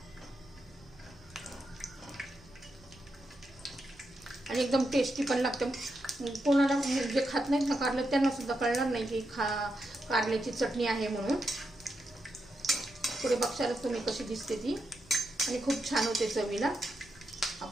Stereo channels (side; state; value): right; noise; rumble, 25 dB below the sound